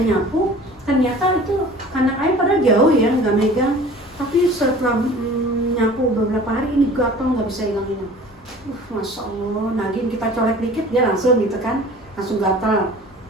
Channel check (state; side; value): normal; both; correlation 0.45